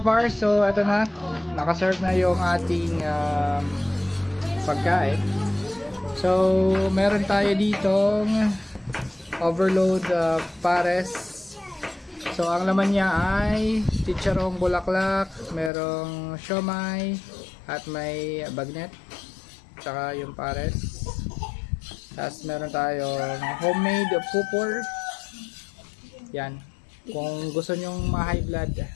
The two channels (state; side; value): drops out; right; at 15.7 s